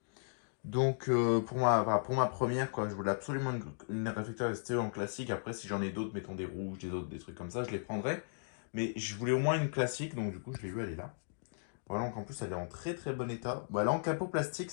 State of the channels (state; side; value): silent; right; digital silence